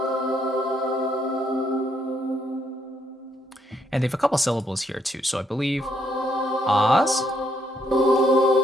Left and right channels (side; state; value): both; normal; correlation 0.73